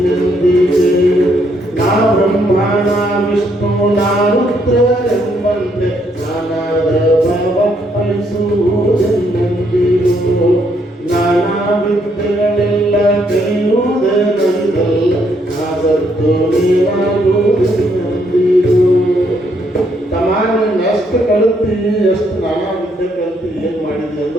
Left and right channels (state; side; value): normal; both; correlation 0.72